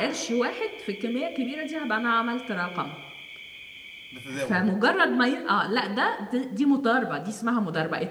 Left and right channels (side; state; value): both; identical; correlation 1.00